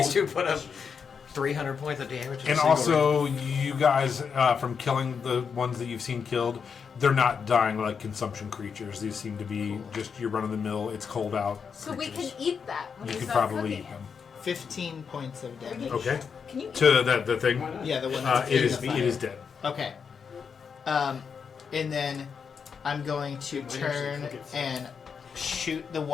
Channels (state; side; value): quieter; right; 6.3 dB